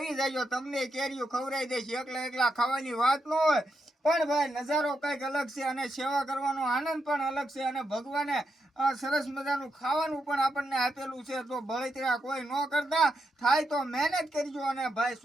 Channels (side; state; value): both; normal; correlation 0.83